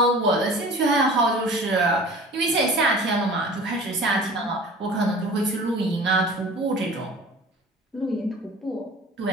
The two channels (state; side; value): normal; both; correlation 0.42